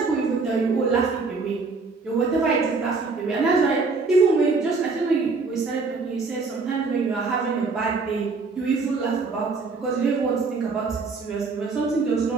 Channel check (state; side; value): quieter; left; 4.2 dB